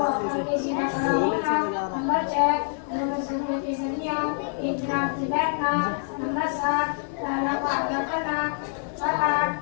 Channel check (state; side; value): silent; right; 55 dB below the other